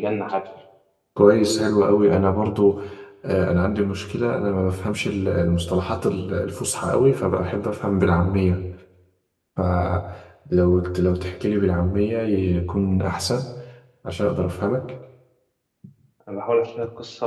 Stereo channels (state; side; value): identical; both; correlation 1.00